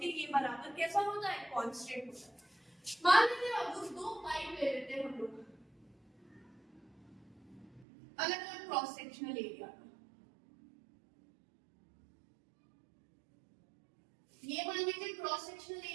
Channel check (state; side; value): drops out; left; at 7.9 s